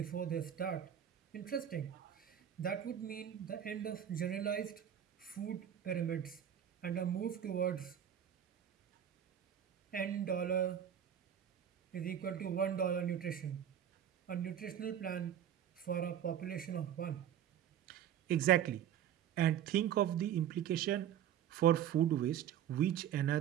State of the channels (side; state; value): left; quieter; 9.8 dB